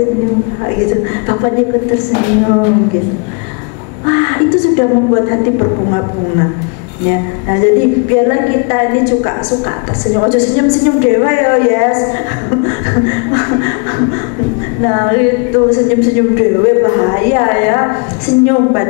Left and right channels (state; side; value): quieter; right; 35.7 dB